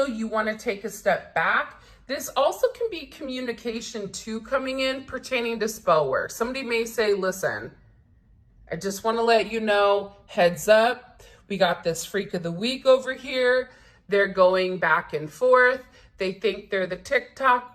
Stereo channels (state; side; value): identical; both; correlation 1.00